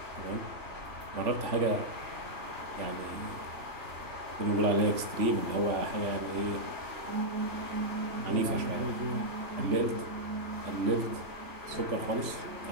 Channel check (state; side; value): late; left; 3.5 ms